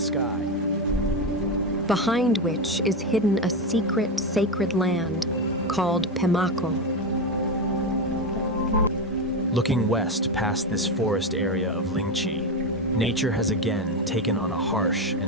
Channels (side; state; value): both; normal; correlation 0.14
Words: Behind which is hidden a secret sacred land called Pemako. Looking west past this forest area of Lingchi, nature has again taken on a harsh